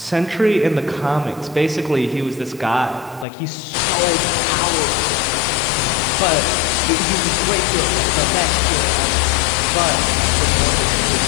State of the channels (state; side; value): drops out; right; at 3.2 s